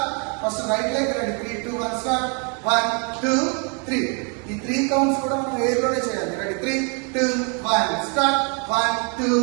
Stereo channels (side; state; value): left; quieter; 36.7 dB